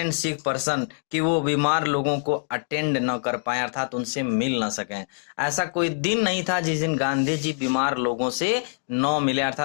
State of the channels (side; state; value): right; silent; digital silence